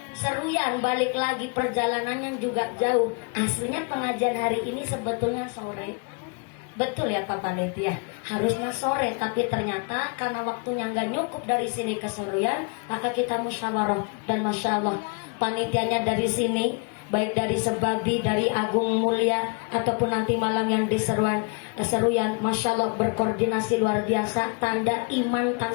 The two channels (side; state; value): right; quieter; 35.5 dB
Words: Seruyan, balik lagi, perjalanannya juga jauh. Aslinya pengajian hari ini sebetulnya sore. Betul ya Pak Panitia, harusnya sore, tapi ternyata karena waktunya nggak cukup dari sini ke Seruyan, maka kita musyawarah. Dan Masya Allah, panitianya dari sini, baik dari Sebabi, dari Agung Mulia, ataupun nanti malam yang di Seruyan, Masya Allah berkoordinasi luar biasa. Tanda iman